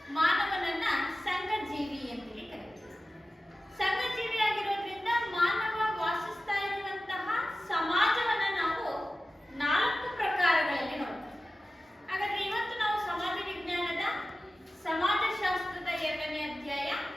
ಮಾನವನನ್ನ ಸಂಘಜೀವಿ ಅಂತೇಳಿ ಕರೀತೀವಿ. ಸಂಘಜೀವಿ ಆಗಿರೋದ್ರಿಂದ ಮಾನವ ವಾಸಿಸ್ತಾ ಇರುವಂತಹ ಸಮಾಜವನ್ನ ನಾವು 4 ಪ್ರಕಾರಗಳಲ್ಲಿ ನೋಡ್ತೀವಿ. ಹಾಗಾದ್ರೆ ಇವತ್ತು ನಾವು ಸಮಾಜ ವಿಜ್ಞಾನದ ಸಮಾಜಶಾಸ್ತ್ರದ 2ನೇ ಅಧ್ಯಾಯ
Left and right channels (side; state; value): both; normal; correlation 0.95